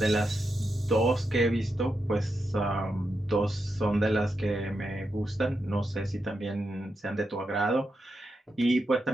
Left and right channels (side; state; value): both; normal; correlation 0.86